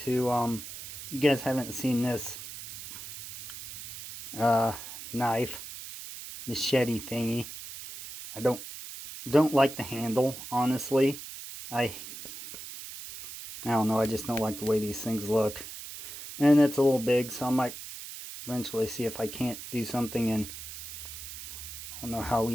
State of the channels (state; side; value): noise; right; hiss, 11 dB below the sound